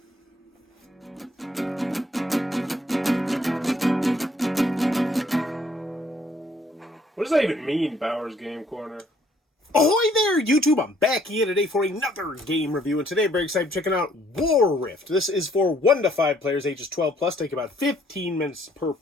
what does that even mean, Bowers Game Corner? Ahoy there, YouTube! I'm back here today for another game review, and today I'm very excited checking out WarRift. This is for 1 to 5 players, ages 12 plus, take about 15 minutes per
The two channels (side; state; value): both; normal; correlation 0.64